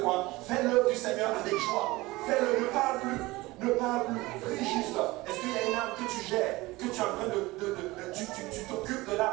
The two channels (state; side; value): quieter; left; 20.5 dB